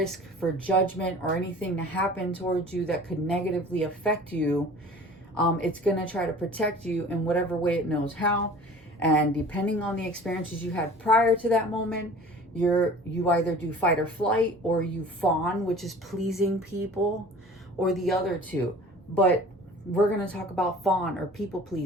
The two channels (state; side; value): normal; both; correlation 0.44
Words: for judgment or anything to happen towards you that could negatively affect you, it's going to try to protect you in whatever way it knows how. And depending on the experiences you had prior to that moment, you either do fight or flight, or you fawn, which is pleasing people, or the other two. But we're going to talk about fawn or people